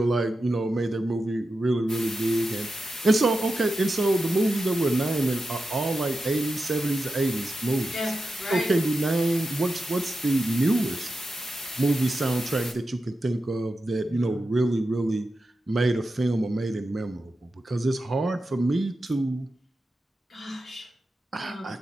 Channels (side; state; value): both; normal; correlation 0.91